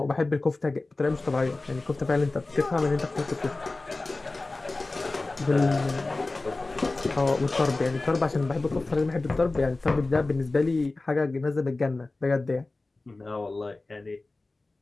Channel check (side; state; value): right; quieter; 3.2 dB